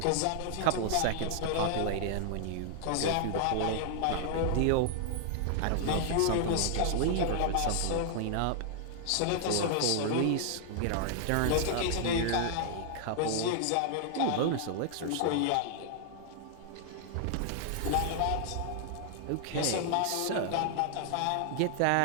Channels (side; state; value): both; different; correlation -0.01